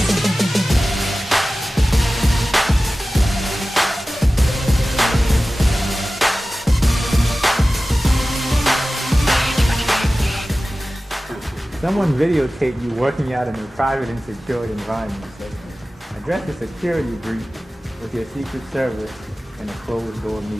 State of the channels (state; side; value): normal; both; correlation 0.96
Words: Someone videotaped you working out in a private and secured environment. So address a security breach with your Secret Service in a closed-door